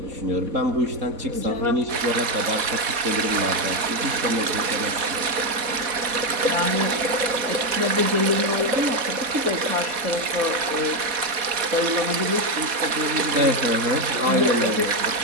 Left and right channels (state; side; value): late; left; 4.1 ms